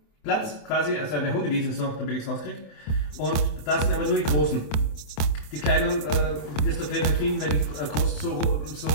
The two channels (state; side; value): late; right; 27 ms